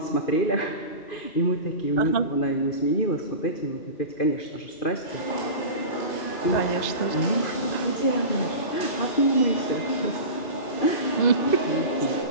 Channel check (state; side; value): late; right; 2.5 ms